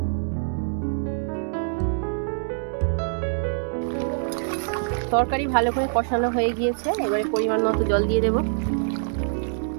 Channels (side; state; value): left; silent; digital silence